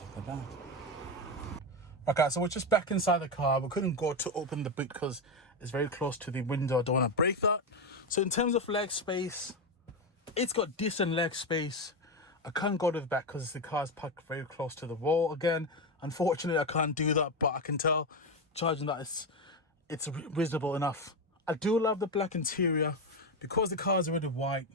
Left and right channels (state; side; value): normal; both; correlation 0.12